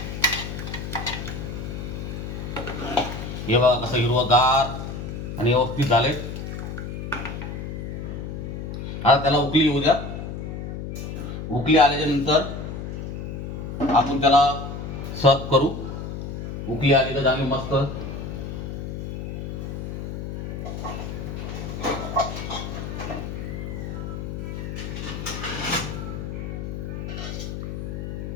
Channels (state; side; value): noise; left; hum, 6 dB below the sound